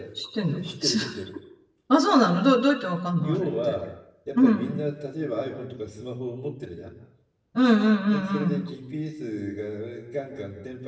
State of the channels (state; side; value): identical; both; correlation 1.00